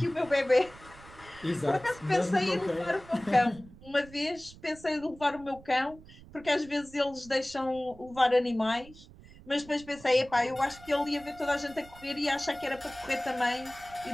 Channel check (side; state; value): right; noise; rumble, 21 dB below the sound